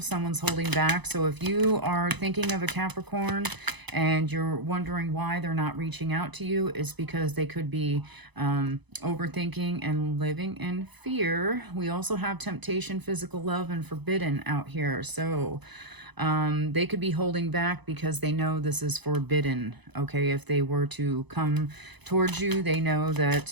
someone's holding back. So if you are thinking of a Capricorn and you're wondering why they're not reaching out to you, it's because they could be overthinking and living in fear. We also have temptation, physical love, and forbidden out here. So they could be holding back because they know this is forbidden. Okay, if they were to come towards you, they know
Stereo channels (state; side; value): late; left; 1.0 ms